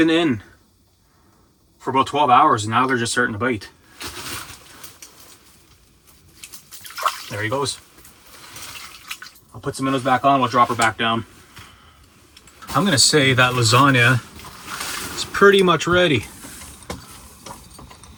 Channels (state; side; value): identical; both; correlation 1.00